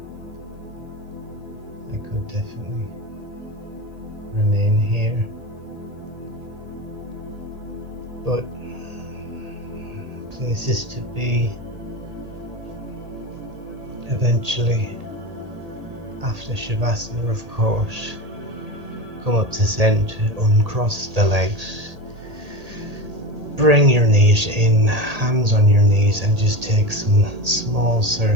I could definitely remain here, but places to be eventually. After Shavasana, of course, come up to center, uncross the legs, bring your knees in, hands on your knees, and just take some small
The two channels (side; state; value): left; late; 1.8 ms